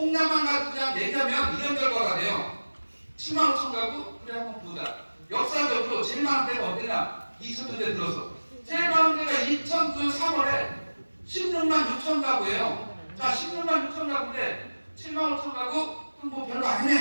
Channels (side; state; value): both; inverted; correlation -1.00